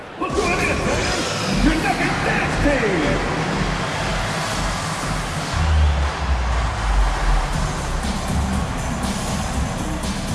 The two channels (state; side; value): identical; both; correlation 1.00